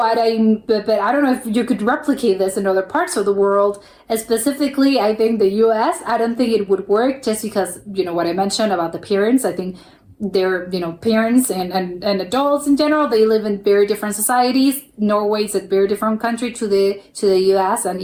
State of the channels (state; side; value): identical; both; correlation 1.00